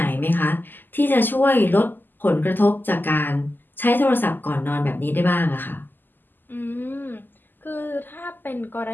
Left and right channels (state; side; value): late; right; 0.090 ms